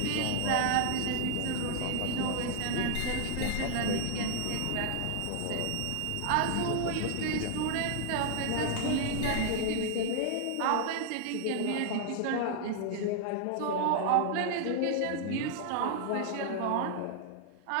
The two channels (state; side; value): different; both; correlation -0.01